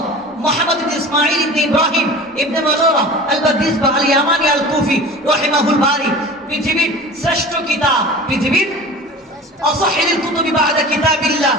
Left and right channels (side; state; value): both; normal; correlation 0.38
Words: মুহাম্মদ ইবনে ইসমাঈল ইবনে ইব্রাহিম ইবনে মাযুরা আল-বাদিসবা আল-ইয়ামানি আল-কুফি রাহিমাহুল বারী, পৃথিবীর শ্রেষ্ঠ কিতাব, পৃথিবীর أصحح الكتب بعد كتاب الله